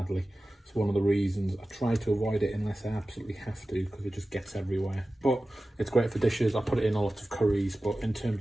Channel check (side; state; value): both; normal; correlation 0.96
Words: It's one of the reasons I try to avoid it unless I absolutely have to, because it just gets everywhere. But it's great for dishes. I put it in a lot of curries, but in terms